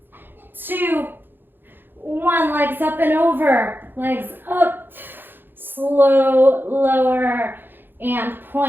2, 1. Legs up and over. Legs up. Slow, lower, and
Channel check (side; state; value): left; late; 0.097 ms